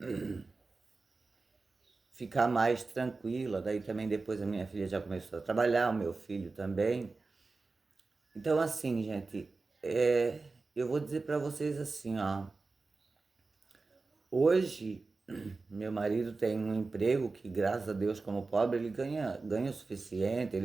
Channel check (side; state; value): left; quieter; 3.8 dB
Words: ficar mais tranquila. Daí também depois a minha filha já começou a trabalhar, o meu filho também. Então assim, gente, eu vou dizer para vocês assim, ó. Hoje, meu marido tem um emprego que, graças a Deus, como pobre, ele ganha o suficiente,